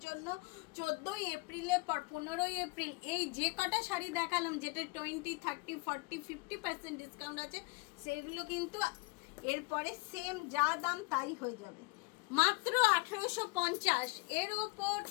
জন্য। 14ই এপ্রিলে 15ই এপ্রিল এই যে কটা শাড়ি দেখালাম, যেটা 20, 30, 40, 50% ডিসকাউন্ট আছে, সেগুলো কিন্তু এরপরে সেম যা দাম তাই হয়ে যাবে। মাত্র 1850, এর ওপর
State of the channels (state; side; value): quieter; right; 27.2 dB